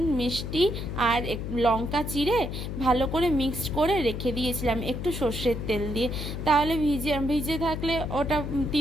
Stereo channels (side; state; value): left; noise; hum, 5 dB below the sound